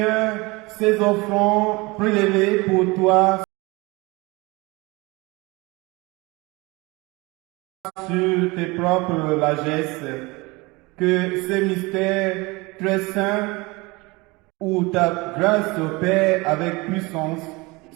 ces offrandes prélevées pour toi sur tes propres largesses, que ces mystères très saints où ta grâce opère avec puissance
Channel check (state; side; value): quieter; left; 24.3 dB